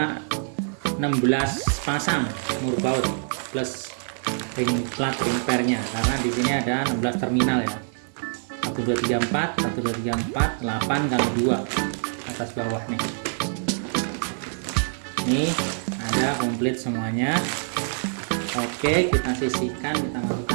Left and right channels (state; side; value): silent; left; 62 dB below the other